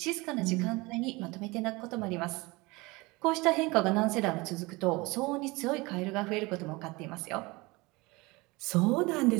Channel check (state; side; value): quieter; left; 23.8 dB